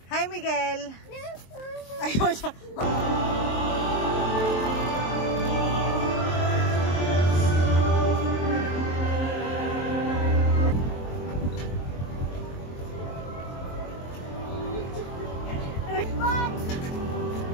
Hi, Miguel! Ayun siya!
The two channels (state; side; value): late; right; 23 ms